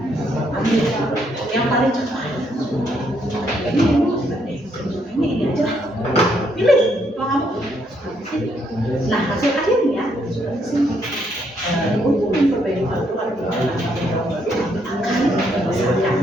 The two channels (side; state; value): both; normal; correlation 0.73